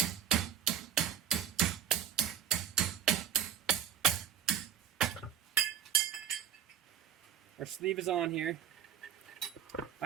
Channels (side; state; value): left; quieter; 9.2 dB